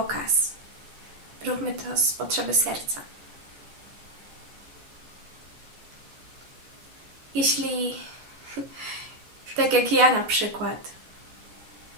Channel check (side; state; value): left; late; 14 ms